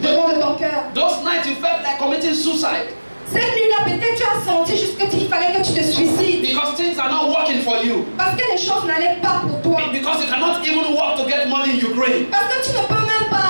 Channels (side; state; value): both; inverted; correlation -1.00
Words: devant de ton cœur. Those nights you felt like committing suicide. Cette nuit-là, peut-être tu as senti juste qu'il fallait que tu te suicides. Because things are not working for you. Parce que les choses n'allaient pas pour toi. Because you cannot even work to get money in Ukraine. Parce que tu ne peux même